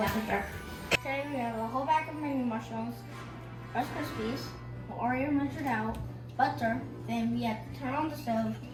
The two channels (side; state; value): both; identical; correlation 1.00